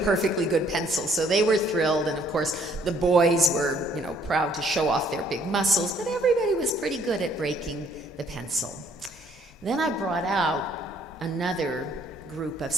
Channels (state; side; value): normal; both; correlation 0.63